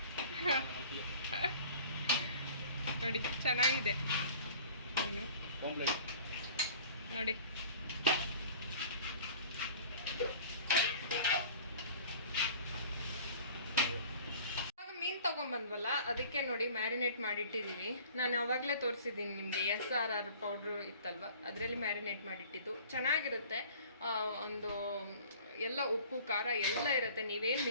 ನೋಡಿ ಚೆನ್ನಾಗಿದೆ ಮೀನು ನೋಡಿ. ಮೀನು ತೊಗೊಂಬಂದ್ವಲ್ಲ, ಅದಕ್ಕೆ ನೋಡಿ ಮ್ಯಾರಿನೇಟ್ ಮಾಡಿಟ್ಟಿದ್ದೀವಿ. ನಾನು ಆವಾಗಲೇ ತೋರಿಸಿದ್ದೀನಿ ನಿಮಗೆ, SRR ಪೌಡ್ರು ಇತ್ತಲ್ವ, ಅದರಲ್ಲಿ ಮ್ಯಾರಿನೇಟ್ ಮಾಡಿಟ್ಟಿದ್ದು. ಚೆನ್ನಾಗಿರುತ್ತೆ. ಒಂದು ಎಲ್ಲ ಉಪ್ಪು ಖಾರ ಎಲ್ಲ ಇರುತ್ತೆ, ನೀವೇನು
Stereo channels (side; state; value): both; inverted; correlation -0.47